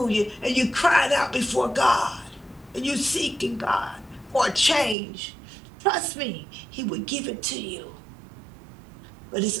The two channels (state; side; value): drops out; left; at 5.0 s